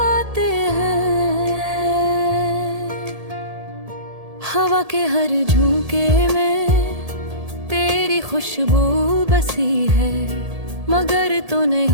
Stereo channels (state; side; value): late; left; 1.8 ms